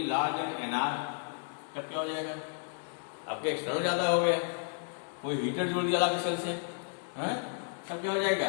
large and n r, तब क्या हो जाएगा, आपके एक्सटर्नल ज्यादा हो गया, कोई हीटर जोड़ दिया अलग सेल से, तब क्या हो जाएगा,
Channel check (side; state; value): right; silent; 56 dB below the other